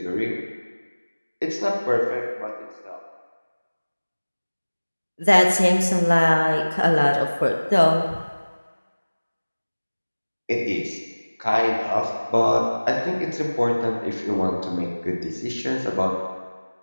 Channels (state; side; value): inverted; both; correlation -1.00